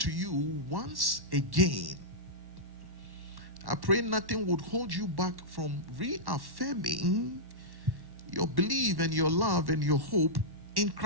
you once again. I pray nothing would hold you back from reaffirming your belief and your love and your hope in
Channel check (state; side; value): late; left; 1.1 ms